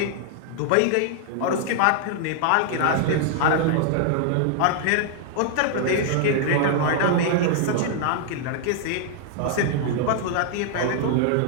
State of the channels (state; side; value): different; both; correlation 0.00